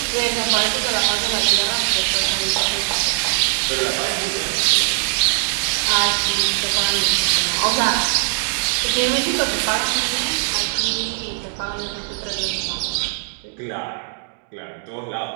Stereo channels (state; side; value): silent; left; digital silence